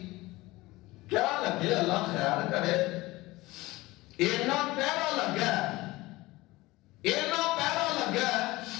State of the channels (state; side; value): quieter; right; 20.0 dB